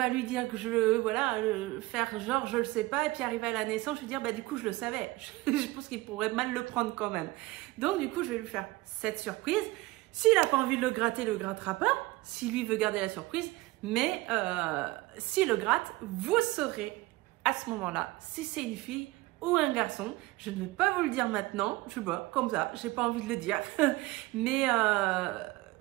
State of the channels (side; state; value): left; quieter; 20.0 dB